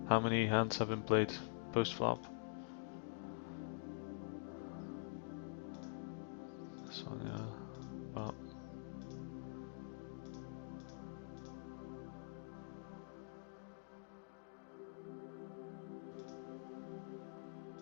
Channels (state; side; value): silent; right; digital silence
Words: How many hands have been played post flop? This one, yeah. Well,